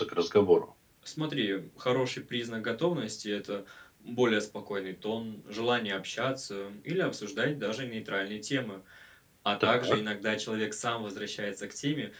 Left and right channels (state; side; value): identical; both; correlation 1.00